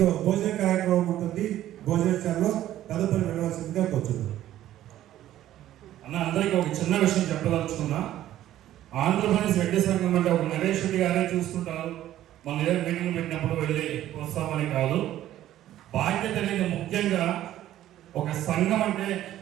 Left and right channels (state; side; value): quieter; left; 13.1 dB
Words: భోజన కార్యక్రమం ఉంటుంది. భోజనశాలలో తదుపరి వెళ్ళవలసిందిగా కూర్చున్నాం. అన్న అందరికీ ఒక చిన్న విషయం చెప్పదలుచుకున్నా. ఆంధ్రప్రదేశ్ రెడ్డి సంఘం అంటే ఒక నరేష్ రెడ్డి గారే చూస్తుంటారు, మన ఏదైనా మీటింగ్ పెట్టినప్పుడు వెళ్ళి వస్తామని కాదు. బాధ్యత అనేది ముఖ్యంగా ఒక సంఘం అంటే